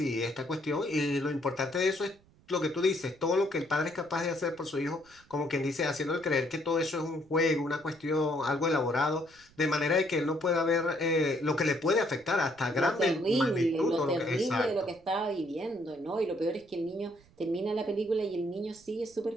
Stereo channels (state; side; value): noise; right; rumble, 29 dB below the sound